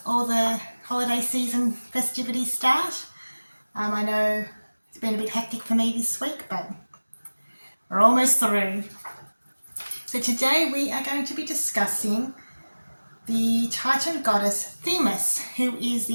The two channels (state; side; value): inverted; both; correlation -1.00